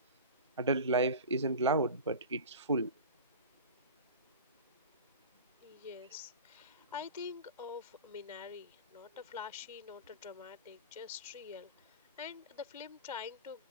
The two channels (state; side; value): inverted; both; correlation -0.32